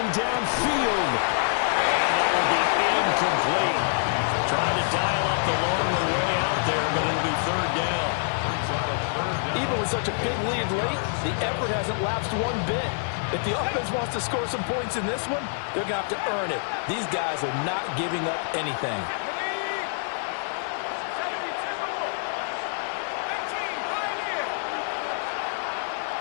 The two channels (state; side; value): silent; right; digital silence